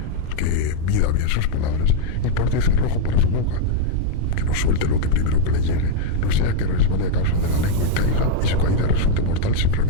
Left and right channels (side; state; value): both; different; correlation -0.01